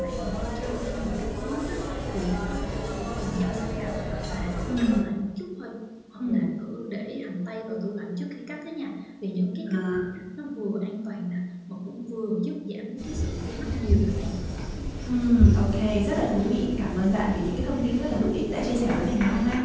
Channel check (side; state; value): both; identical; correlation 1.00